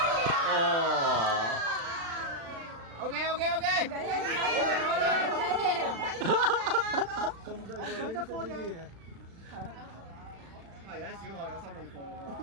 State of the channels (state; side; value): late; left; 36 ms